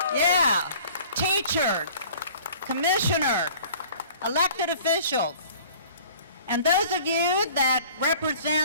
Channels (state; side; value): inverted; both; correlation -0.49